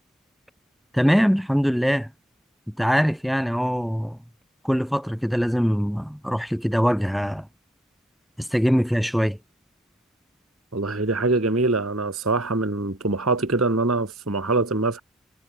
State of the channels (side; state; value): both; normal; correlation 0.69